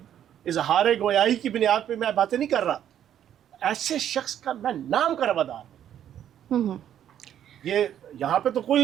اظہار گویائی کی بنیاد پہ میں باتیں نہیں کر رہا. ایسے شخص کا میں نام کا روادار ہوں. یہ یہاں پہ تو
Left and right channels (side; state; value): left; quieter; 10.3 dB